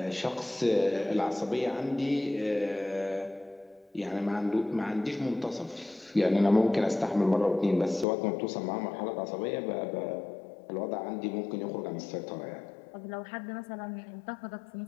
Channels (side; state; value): right; drops out; at 8.1 s